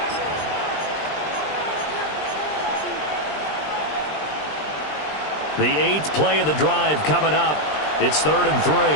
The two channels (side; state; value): right; late; 20 ms